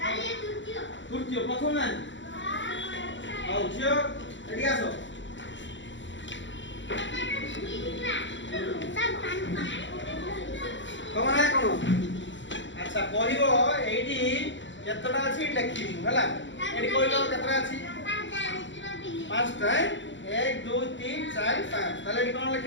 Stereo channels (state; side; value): late; right; 0.54 ms